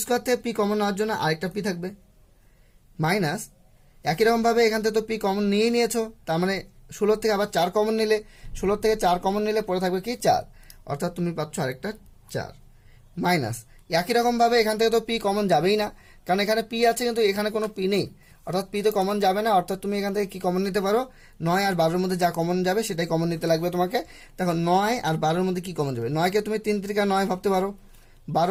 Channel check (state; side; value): identical; both; correlation 1.00